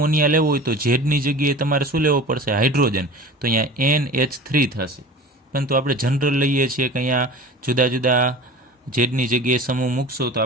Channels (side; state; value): both; normal; correlation 0.37